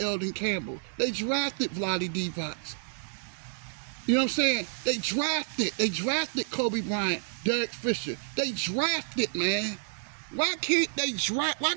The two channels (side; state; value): left; silent; digital silence